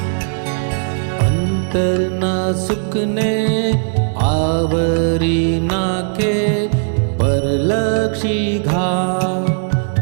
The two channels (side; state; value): left; silent; 68 dB below the other